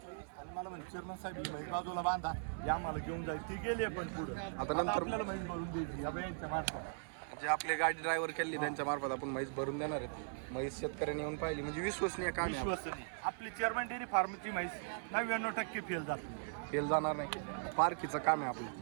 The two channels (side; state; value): left; silent; 52 dB below the other